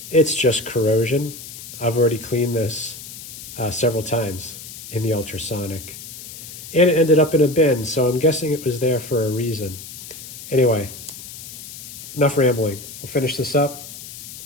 It's just corrosion. I've already cleaned this several times in the ultrasonic. And it ended up in a bin, so I'm guessing it was there for a reason. Anyway, enough rambling. We'll finish this up,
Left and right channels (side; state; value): left; noise; hiss, 13 dB below the sound